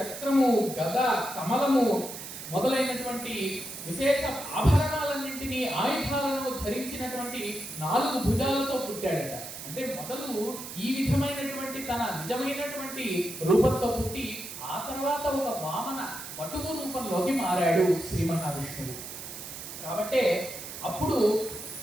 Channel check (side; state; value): right; noise; hiss, 10 dB below the sound